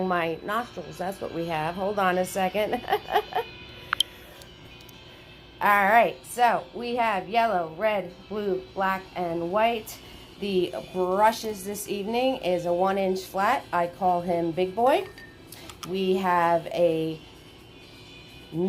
my nostrils. That's what we have. Hold on a second. All right, so we have yellow, red, blue, black, and white. The brushes this evening is a 1-inch flat. I call him Big Boy. We have a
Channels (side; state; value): both; identical; correlation 1.00